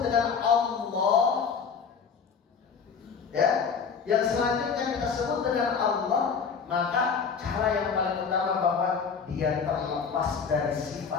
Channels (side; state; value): right; quieter; 6.0 dB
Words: dengan Allah, ya, yang selanjutnya kita sebut dengan Allah, maka cara yang paling utama bahwa dia terlepas dari